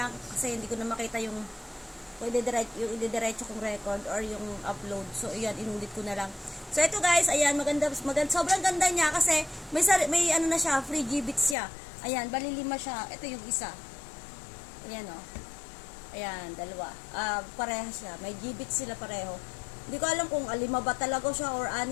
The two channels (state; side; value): drops out; right; at 11.6 s